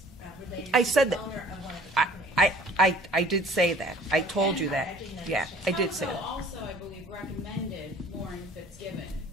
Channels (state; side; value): normal; both; correlation 0.50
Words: related to the owner of one of the companies? I did say that. I told you that. Yeah, I did say that. Also, I believe, recommended Lauren Fitzgibbon